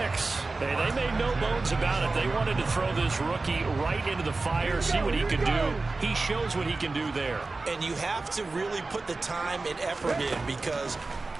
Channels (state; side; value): quieter; left; 3.5 dB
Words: Hey, they made no bones about it. They wanted to throw this rookie right into the fire, see what he could do. He shows what he can do there. And you have to really put the time and effort in, because